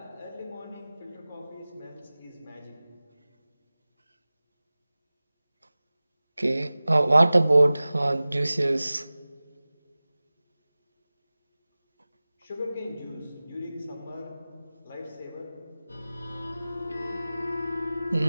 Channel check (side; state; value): both; inverted; correlation -0.98